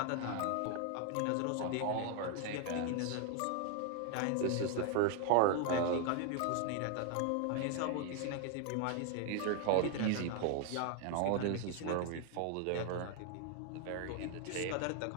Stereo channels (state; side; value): different; both; correlation 0.01